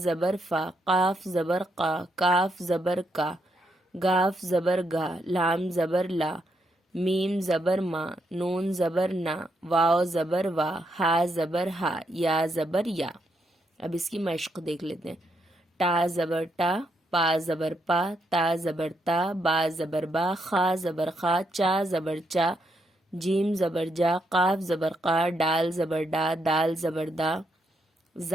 فا، قاف زبر قا، کاف زبر کا، گاف زبر گا، لام زبر لا، میم زبر ما، نون زبر نا، واو زبر وا، ہا زبر ہا، یا زبر یا۔ اب اس کی مشق دیکھ لیتے ہیں۔ ٹا زبر ٹا، پا زبر پا، تا زبر تا، با زبر با، خا زبر خا، چا زبر چا، جیم زبر جا، قاف زبر قا، ڈال زبر ڈا، دال زبر دا،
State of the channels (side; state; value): both; normal; correlation 0.78